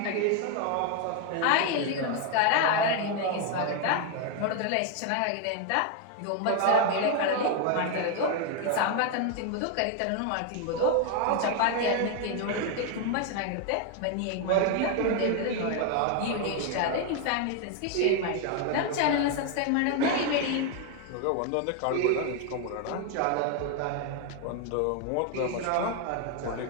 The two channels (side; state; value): both; different; correlation 0.01